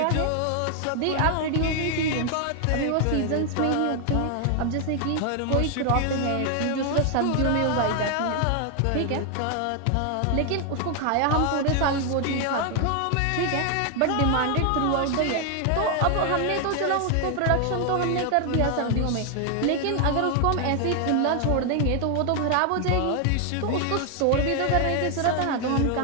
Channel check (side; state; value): both; different; correlation 0.00